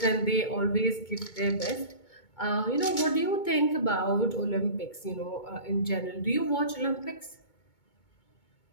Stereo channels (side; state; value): right; late; 2.2 ms